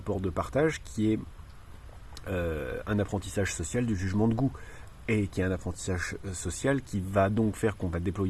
de partage qui est un apprentissage social du jugement de goût et qui est un apprentissage social qui va donc faire qu'on va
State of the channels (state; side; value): identical; both; correlation 1.00